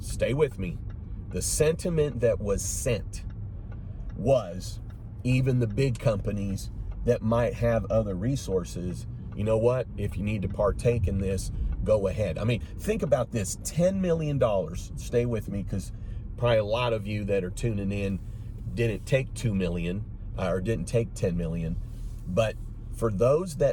with me, the sentiment that was sent was, even the big companies that might have other resources, you know what, if you need to partake in this, go ahead. I mean, think about this, $10 million, stay with me, because probably a lot of you that are tuning in didn't take 2 million or didn't take 10 million, but for those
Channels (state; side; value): identical; both; correlation 1.00